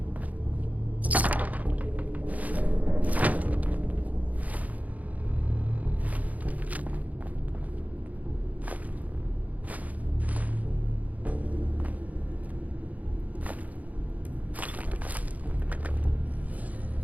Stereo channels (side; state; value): left; late; 0.075 ms